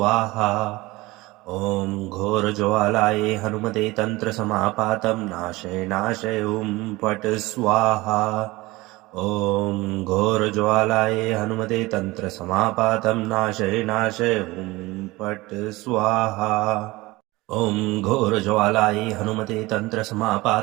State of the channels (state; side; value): quieter; left; 20.8 dB